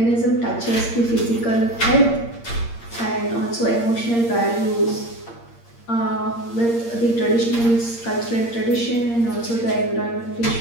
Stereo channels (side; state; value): right; late; 8.6 ms